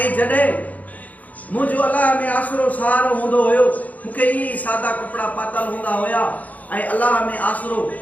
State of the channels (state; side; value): late; right; 0.076 ms